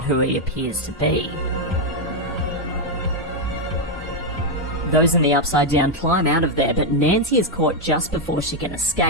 who he appears to be. Those in the Upside Down climb out of there, but Nancy is caught just before she can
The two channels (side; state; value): both; normal; correlation 0.02